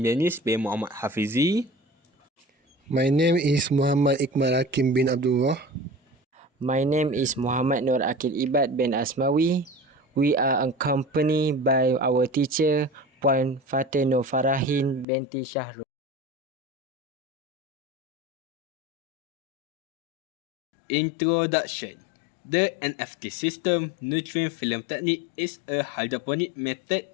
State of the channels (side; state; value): right; drops out; at 15.1 s